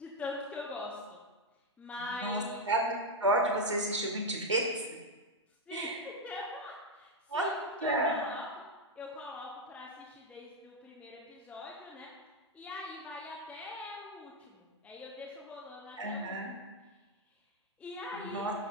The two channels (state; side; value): normal; both; correlation 0.03